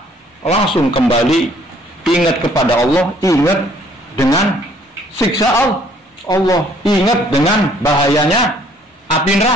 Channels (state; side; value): normal; both; correlation 0.61